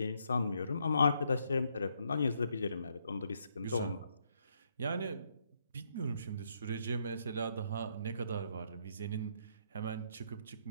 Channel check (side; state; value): both; inverted; correlation -0.74